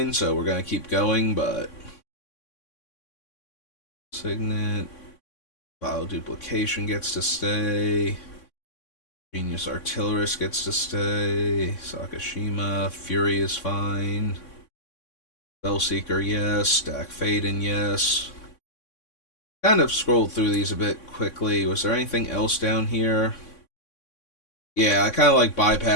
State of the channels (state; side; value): late; right; 3.6 ms